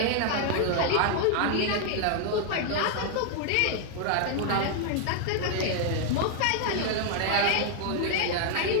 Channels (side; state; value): both; different; correlation 0.00